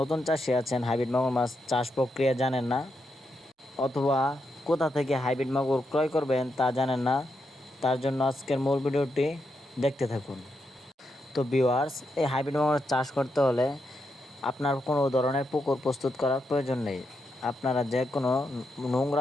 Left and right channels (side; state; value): both; normal; correlation 0.83